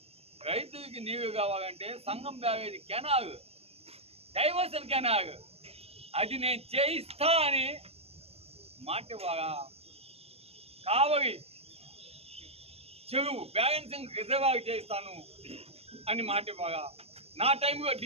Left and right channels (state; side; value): late; left; 0.29 ms